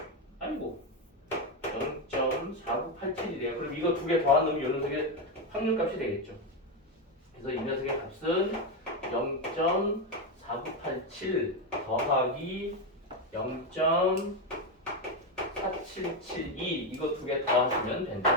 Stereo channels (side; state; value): both; normal; correlation 0.09